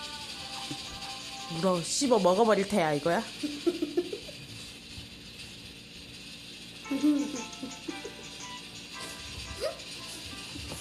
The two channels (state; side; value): identical; both; correlation 1.00